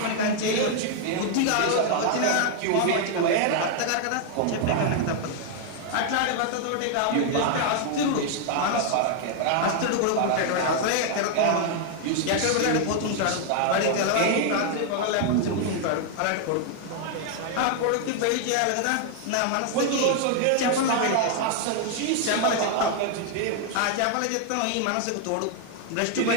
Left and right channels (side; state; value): both; different; correlation 0.00